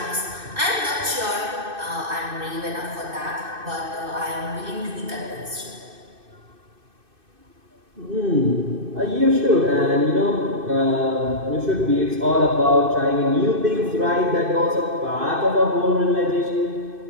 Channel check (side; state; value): left; late; 2.6 ms